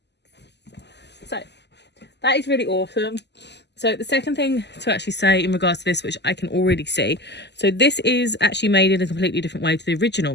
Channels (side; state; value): right; late; 0.50 ms